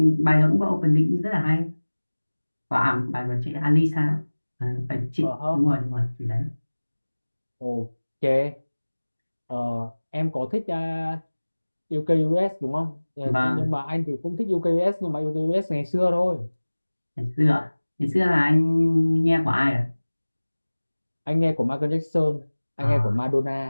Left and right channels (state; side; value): inverted; both; correlation -1.00